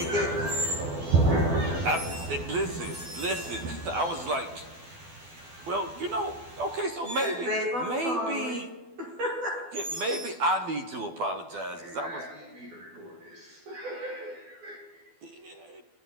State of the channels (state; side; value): late; left; 12 ms